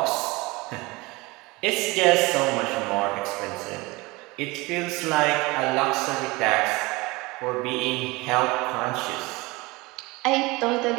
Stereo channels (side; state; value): left; quieter; 23.2 dB